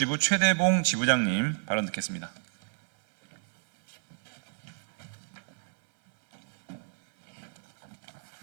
최대봉 지부장님 발언 듣겠습니다.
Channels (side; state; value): left; silent; 58 dB below the other